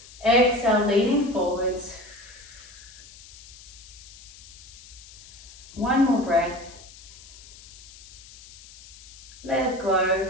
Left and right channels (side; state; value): left; noise; hiss, 19 dB below the sound